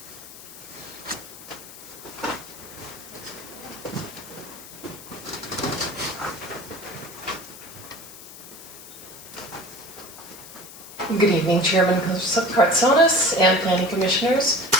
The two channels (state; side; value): noise; left; hiss, 16 dB below the sound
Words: Good evening, Chairman Kartsonis and Planning Commissioners.